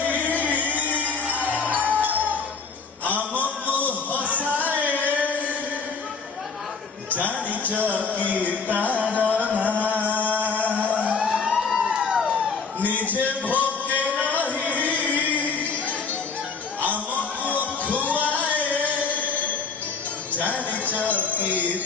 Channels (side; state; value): right; quieter; 5.0 dB